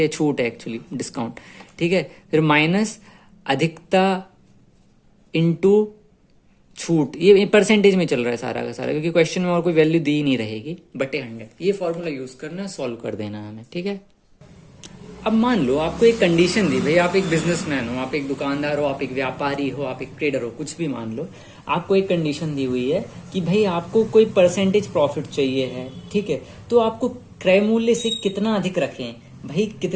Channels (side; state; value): both; identical; correlation 1.00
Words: ये छूट है एक्चुअली डिस्काउंट, ठीक है, फिर माइनस अधिकता इंटू छूट, ये परसेंटेज में चल रहा है सारा का सारा, क्योंकि क्वेश्चन में और कोई वैल्यू दी नहीं रहेगी, बटे 100। ये फॉर्मूला यूज करना, सॉल्व कर देना हमें, ठीक है। अब मान लो आपको एक कंडीशन दी, भाई आप एक बिजनेसमैन हो, आप एक दुकानदार हो, आप एक व्यापारी हो, आप एक ट्रेडर हो, कुछ भी मान लो, आपको एक कंडीशन दी हुई है कि भाई आपको कोई परसेंटेज प्रॉफिट चाहिए है, ठीक है, तो आपको क्रय मूल्य से कितना अधिक रखें, भाई